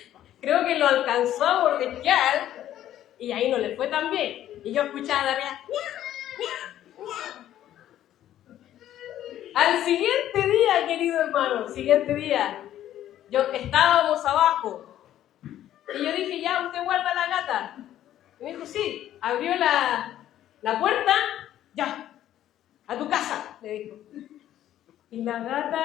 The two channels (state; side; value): quieter; right; 12.1 dB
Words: Creo que lo alcanzó a mordisquear y ahí no le fue tan bien. Y yo escuchaba de arriba, al siguiente día, querido hermano, siguiente día, estábamos abajo y yo dije, ya, ¿usted guarda la gata? Y me dijo, sí. Abrió la puerta, ya, a tu casa, le dijo. Y la